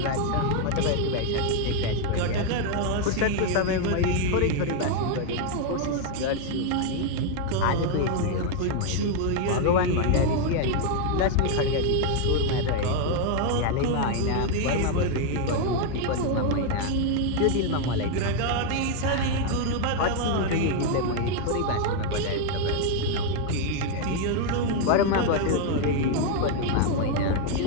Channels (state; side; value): different; both; correlation 0.01